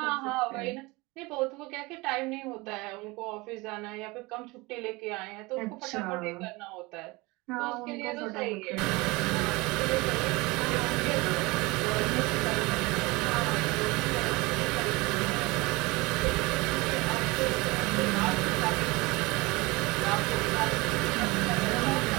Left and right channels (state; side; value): quieter; left; 23.6 dB